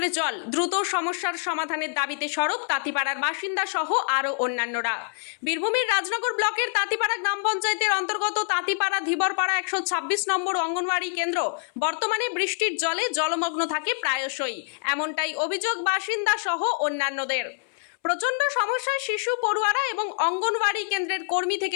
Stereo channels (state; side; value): silent; right; 61 dB below the other